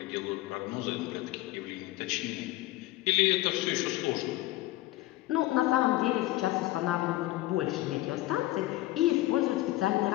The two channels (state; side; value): quieter; right; 17.4 dB